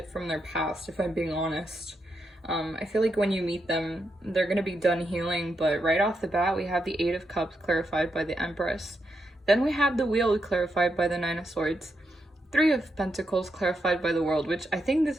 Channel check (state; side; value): normal; both; correlation 0.83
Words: from their past, if I'm being honest. I feel like when you meet them, they're going to be done healing, but right off the bat, we have the 8 of Cups clarified by the Empress. Then we have the Wheel clarified by the 9 of Swords. 3 of Pentacles clarified by the World, which I think